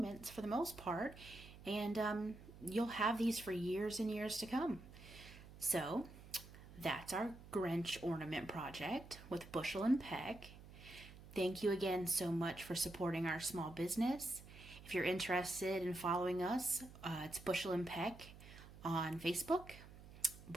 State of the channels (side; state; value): right; noise; hum, 17 dB below the sound